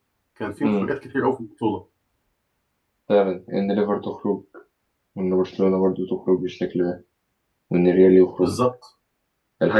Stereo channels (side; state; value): both; identical; correlation 1.00